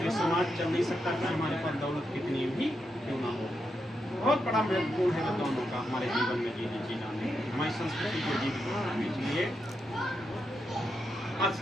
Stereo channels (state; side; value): normal; both; correlation 0.84